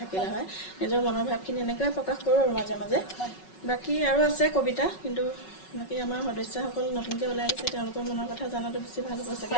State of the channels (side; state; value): right; late; 5.4 ms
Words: হয় নিজৰ মনৰ ভাৱখিনি এনেকৈ প্ৰকাশ কৰোঁ আৰু মাজে মাজে বাকী আৰু আছে কবিতা কিন্তু বাকী আমাৰ সদস্যসকল নতুনকৈ ওলাই আহিছে তেওঁলোকৰ মনৰ কথা জনাটো বেছি ভাল হ'ব চাগে